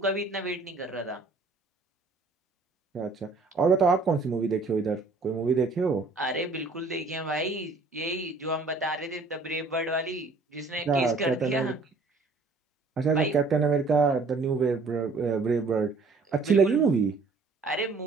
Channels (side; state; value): left; quieter; 3.8 dB